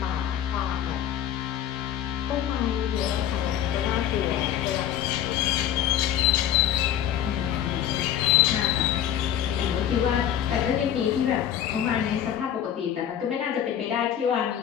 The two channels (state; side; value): quieter; right; 10.4 dB